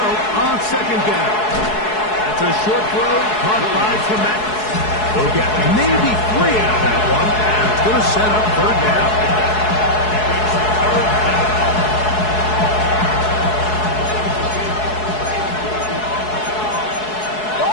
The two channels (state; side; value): late; right; 4.7 ms